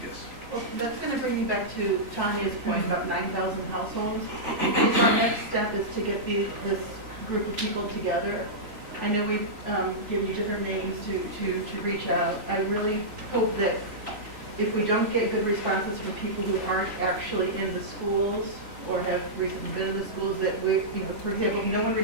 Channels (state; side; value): late; left; 3.4 ms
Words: Yes. Well, that's going to bring me back to Tanya's point about 9,000 households. So our next step is to get this group of people together. I know we've given you different names to reach out. I really hope that if we don't get good responses from people who aren't actually in the schools or have recently been in the schools, that we, you know, for example, if no one